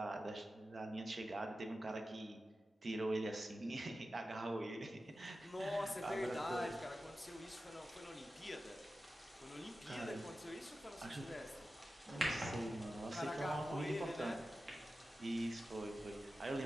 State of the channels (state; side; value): normal; both; correlation 0.93